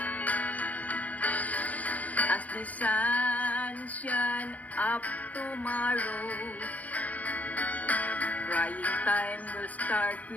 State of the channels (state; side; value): late; right; 0.073 ms